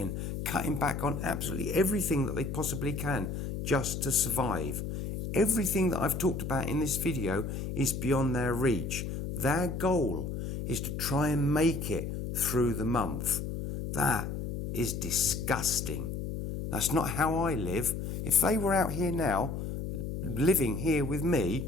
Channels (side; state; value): left; noise; hum, 4 dB below the sound